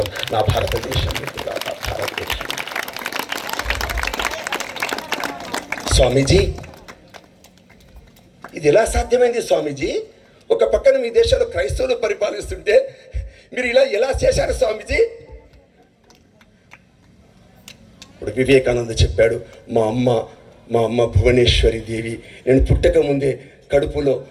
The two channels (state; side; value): identical; both; correlation 1.00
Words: నా భారతదేశం. స్వామీజీ ఇది ఎలా సాధ్యమైంది స్వామీజీ? ఒక పక్కన మీ దేశంలో క్రైస్తవులు పరిపాలిస్తుంటే మీరు ఇలా ఎలా చేశారు స్వామీజీ? ఇప్పుడు వివేకానంద చెప్పాడు, మా అమ్మ భువనేశ్వరి దేవి నేను పుట్టక ముందే కడుపులో